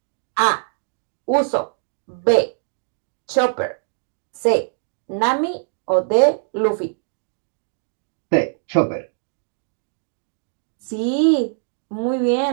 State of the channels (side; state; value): left; silent; digital silence